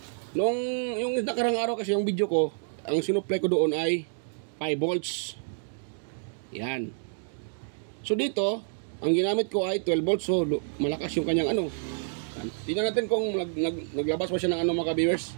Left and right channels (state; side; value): silent; left; digital silence